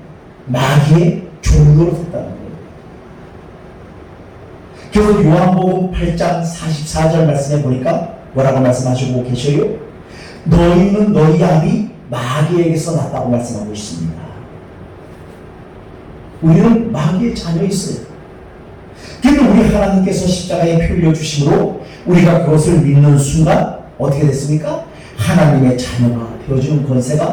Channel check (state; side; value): identical; both; correlation 1.00